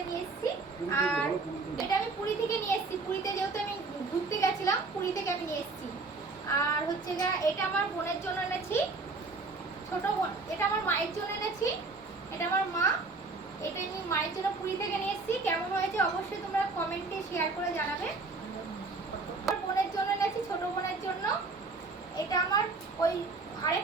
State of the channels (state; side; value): quieter; left; 3.8 dB